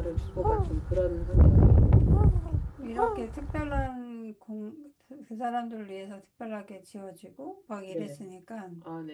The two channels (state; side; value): identical; both; correlation 1.00